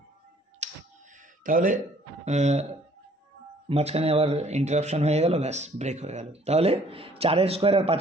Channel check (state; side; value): normal; both; correlation 0.58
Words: তাহলে মাঝখানে আবার ইন্টারাপশন হয়ে গেল, ব্যাস ব্রেক হয়ে গেল। তাহলে 4 স্কোয়ার আর